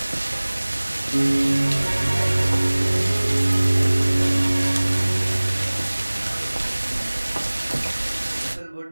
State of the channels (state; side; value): inverted; both; correlation -1.00